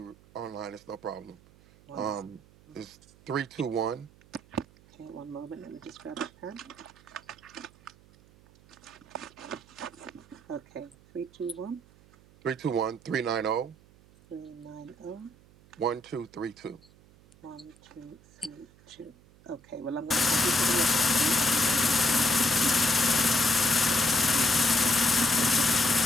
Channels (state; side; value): noise; right; hum, 26 dB below the sound